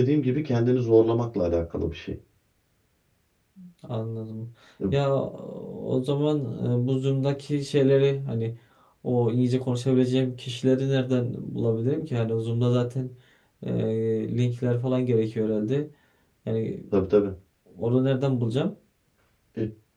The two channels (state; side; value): identical; both; correlation 1.00